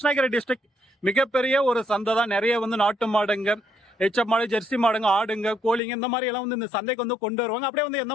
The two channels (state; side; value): drops out; right; at 5.8 s